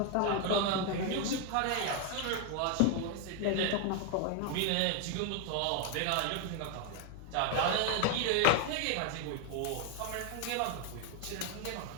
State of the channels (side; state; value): both; different; correlation 0.01